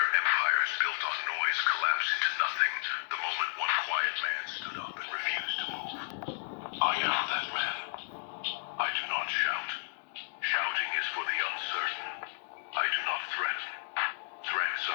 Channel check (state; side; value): silent; right; digital silence